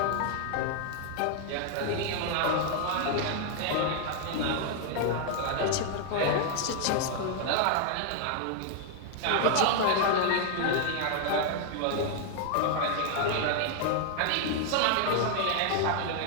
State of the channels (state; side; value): different; both; correlation 0.00